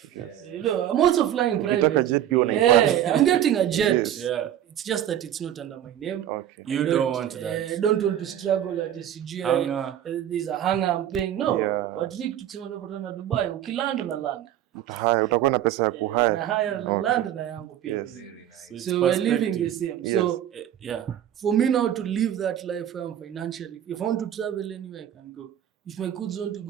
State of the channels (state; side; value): quieter; left; 11.0 dB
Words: You know, I'm also flying private. Ukitaka jet pia Yeah, I'm getting a jet. Yes. Yeah. It's just that it's not under my name. Okay. You don't want that. I don't want to struggle at the CGI. Hanger. There's a hanger I'm paying. No. Yeah. But Rick tukisema tunapatana Dubai, ukilanda unalanda. Utahaya, utakuwa na pesa ya na kuhaya. haya na land na yangu pia. Yes. Very nice. it's So we're living the perspective. same. So Yeah. for me now to live that life where I'm financially, if I want to travel anywhere, I can go. If my kids want